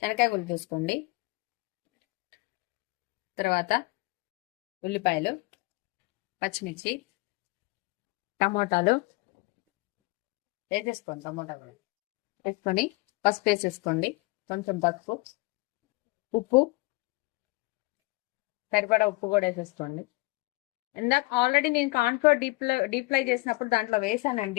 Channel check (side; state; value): right; quieter; 23.9 dB